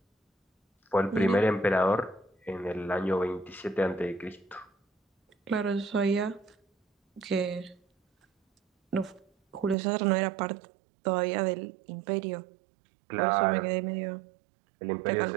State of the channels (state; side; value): drops out; left; at 9.8 s